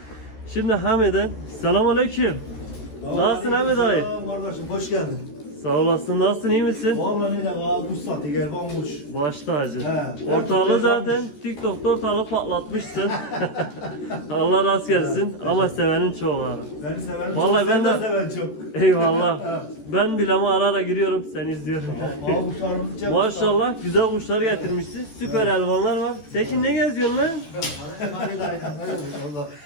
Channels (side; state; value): right; late; 14 ms